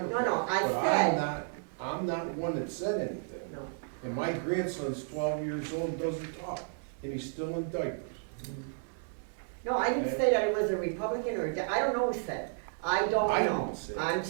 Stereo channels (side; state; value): left; silent; digital silence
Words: No, I but said- I'm not one that said anything. No. And my grandson's 12 years old and doesn't talk, and he's still in diapers. No, I didn't say that it was a Republican or, I don't know who said. I don't I know. didn't say it. I'm